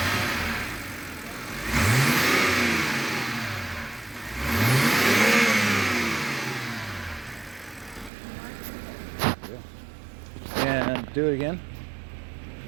And do it again.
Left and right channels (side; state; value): left; drops out; at 8.1 s